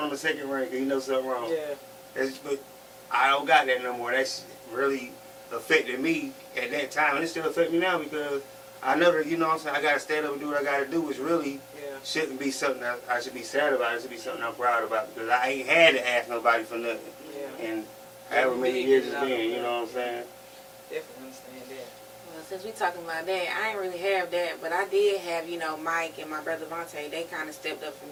on the second ring because he knows something wrong. Yeah. But I don't got that no more. That's really affected me at that time, and it still affects me now because I know that, you know what I'm saying, I gotta stand up and do what I gotta do, which really shouldn't be something that I should be sad about. It should be something I'm proud about because I ain't had to ask nobody for nothing. Yeah. And however many years it's been, you know what I'm saying? Definitely understand that. Well, since we talking about that, I ain't really have that, but I did have, you know, Mike and my brother Vontae. They kind of stepped up for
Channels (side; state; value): both; identical; correlation 1.00